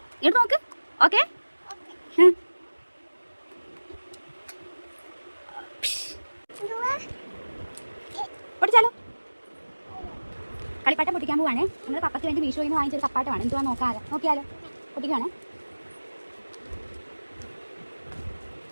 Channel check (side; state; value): both; inverted; correlation -1.00